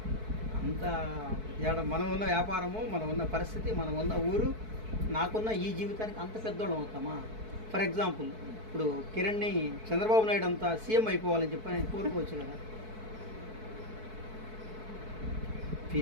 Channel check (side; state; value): left; late; 4.6 ms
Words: అంత మనం ఉన్న వ్యాపారము, మనం ఉన్న పరిస్థితి, మనం ఉన్న ఊరు, నాకున్న ఈ జీవితానికి అంత పెద్దోళ్ళం అవుతామా? ఫర్ ఎగ్జాంపుల్ ఇప్పుడు కిరణ్ని చంద్రబాబు నాయుడు అంతా సీఎం అయిపోవాలని చెప్పి నేను కోరుకోవచ్చు కదా.